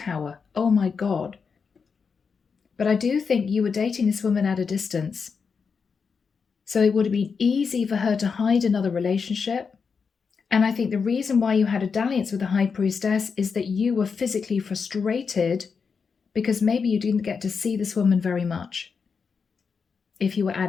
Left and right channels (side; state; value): right; quieter; 5.6 dB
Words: Oh my God. But I do think you were dating this woman at a distance. So it would have been easy for her to hide another relationship. And I think the reason why you had a dalliance with the High Priestess is that you were physically frustrated because maybe you didn't get to see this woman very much if you were